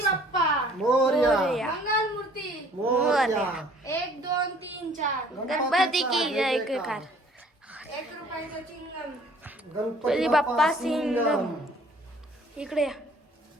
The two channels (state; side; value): normal; both; correlation 0.56